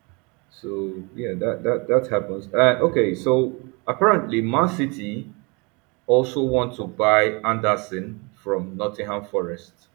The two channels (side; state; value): left; quieter; 29.4 dB